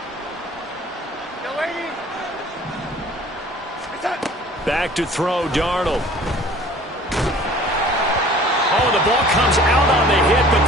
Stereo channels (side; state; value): both; normal; correlation 0.49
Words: Back to throw, Darnold. Oh, the ball comes out on the hit, but